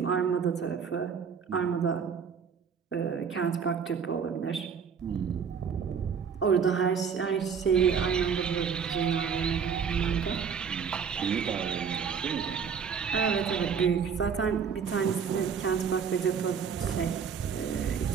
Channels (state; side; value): quieter; left; 6.6 dB